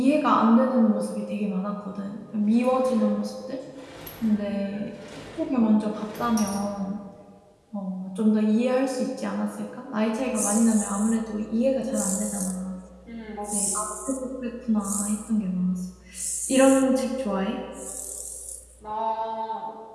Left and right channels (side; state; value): both; identical; correlation 1.00